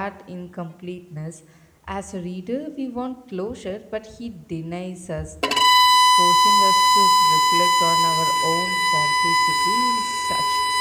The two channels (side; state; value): both; identical; correlation 1.00